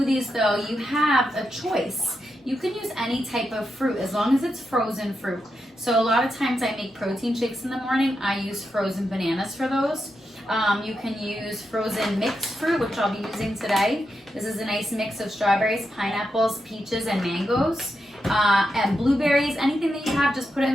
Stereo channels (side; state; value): both; normal; correlation 0.86